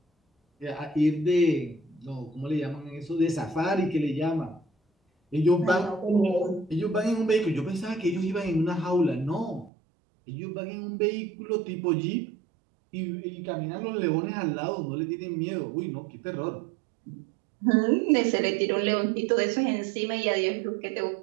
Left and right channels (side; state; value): left; drops out; at 9.7 s